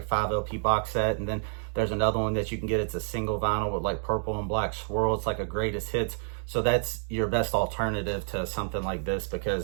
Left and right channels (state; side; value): silent; left; digital silence